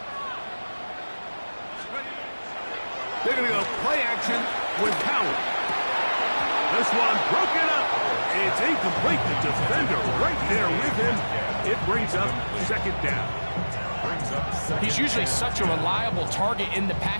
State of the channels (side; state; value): both; inverted; correlation -1.00